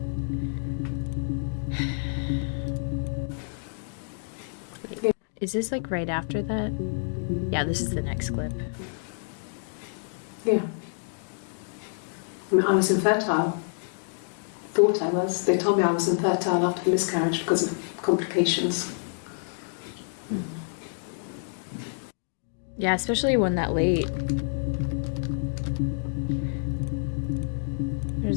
Wait, is this like right after that? Yeah, this is the next clip. Yeah. I mean, I was infertile. Thought I was. They told me I was infertile after the miscarriage because of complications. Yeah, especially one that late. Where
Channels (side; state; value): right; silent; digital silence